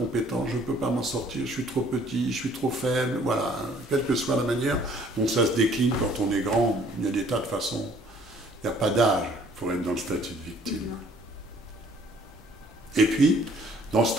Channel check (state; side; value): normal; both; correlation 0.58